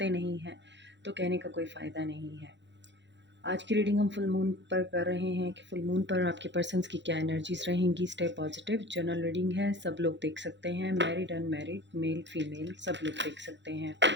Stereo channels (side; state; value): left; late; 0.52 ms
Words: नहीं हैं, तो कहने का कोई फ़ायदा नहीं है। आज की रीडिंग हम फुल मून पर कर रहे हैं कि फुल मून पर आपके पर्सन्स की क्या एनर्जीज रहेंगी। Stay positive. जनरल रीडिंग है, सब लोग देख सकते हैं, मैरिड अनमैरिड, मेल फीमेल, सब लोग देख सकते हैं।